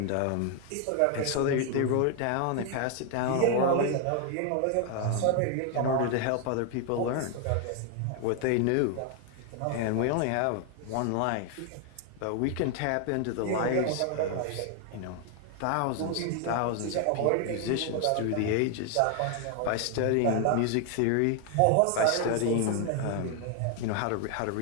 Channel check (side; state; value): both; different; correlation 0.00